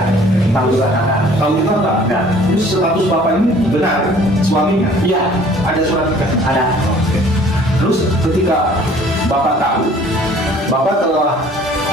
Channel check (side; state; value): both; normal; correlation 0.53